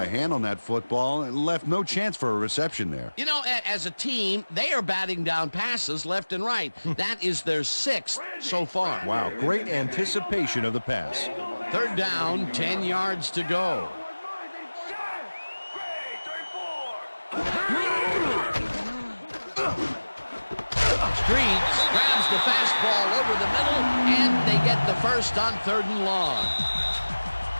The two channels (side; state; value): both; inverted; correlation -1.00